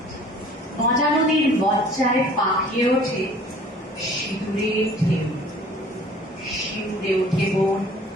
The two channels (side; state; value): both; normal; correlation 0.50